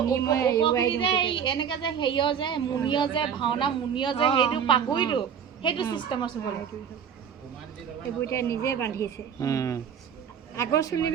ওপৰখিনি যে এনেকে যে হেৰিয় যে মুনিয় যে ভাওনা মুনিয় যে সেইটো পাগুৰিটো সেইটো চিষ্টেমৰ চুবলৈ এইবোৰ এতিয়া নিজে বান্ধিছে আগৰ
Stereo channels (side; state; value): left; quieter; 7.8 dB